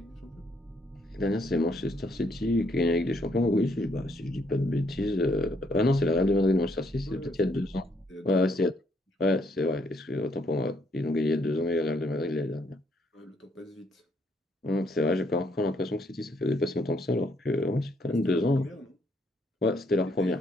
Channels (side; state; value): both; normal; correlation 0.71